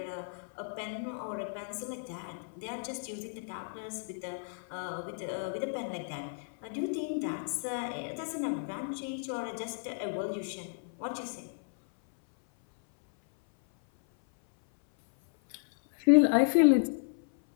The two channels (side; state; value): right; silent; 56 dB below the other